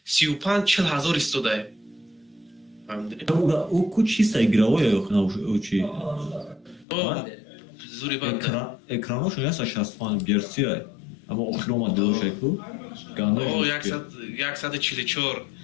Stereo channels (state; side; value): drops out; right; at 6.9 s